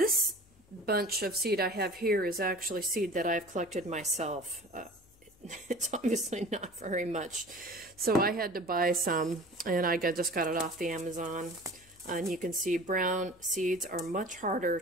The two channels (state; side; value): noise; left; hum, 29 dB below the sound